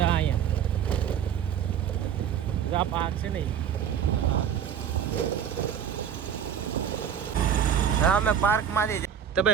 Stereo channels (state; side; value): quieter; left; 8.5 dB